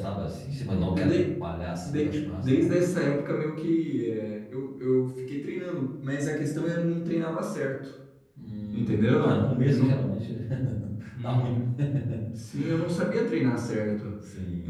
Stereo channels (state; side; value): identical; both; correlation 1.00